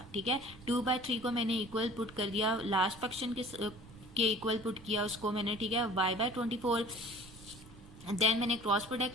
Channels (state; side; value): noise; right; rumble, 19 dB below the sound